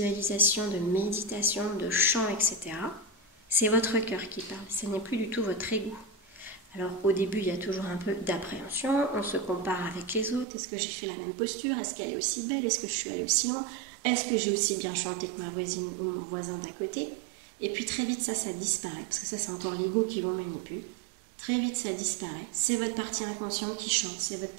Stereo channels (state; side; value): drops out; left; at 10.5 s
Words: de méditation, de chant, etc., c'est votre cœur qui parle, ce n'est plus du tout votre ego. Alors au début, il y a toujours un peu d'appréhension, on se compare avec les autres, est-ce que j'ai fait la même posture, est-ce qu'elle est aussi belle, est-ce que je suis allée aussi loin, est-ce que j'ai aussi bien chanté que ma voisine ou mon voisin d'à côté? Et puis très vite ça disparaît, parce que ça c'est encore l'ego qui vous manipule. Très vite ça disparaît, c'est votre partie inconsciente qui chante, c'est votre